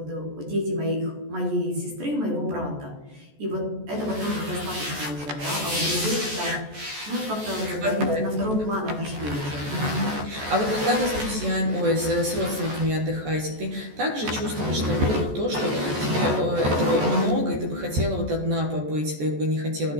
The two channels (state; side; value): late; left; 14 ms